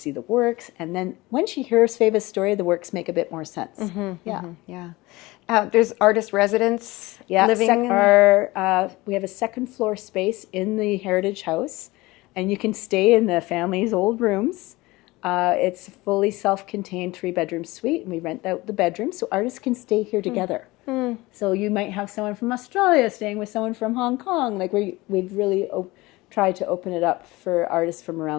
the works. And then when she hears Sveva's story, the works make a bit more sense. There's artist residents living we have a second floor space in the Heritage House, and you can stay in the family's old rooms. It's a fully self-contained 3-bedroom suite, and we rent out the bedrooms so artists can stay here together. So you might have someone from Australia staying with someone from Hong Kong. Like we've really tried to open it up for artists from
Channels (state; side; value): quieter; right; 20.9 dB